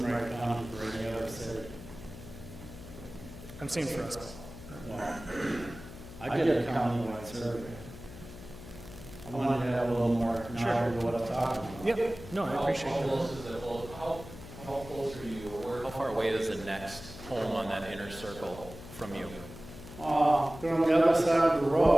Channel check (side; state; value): left; noise; hum, 14 dB below the sound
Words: Wright County for any other city. I'm saying for us. Well, I did a countywide survey. I wanted to have a little more knowledge of what I'm talking about. Yep, no, I appreciate How that. close is it, how close are you, or how far away is the next home on that inner circle from you? They're on the other side of the